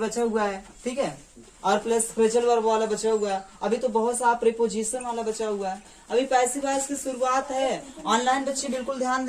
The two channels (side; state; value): both; identical; correlation 1.00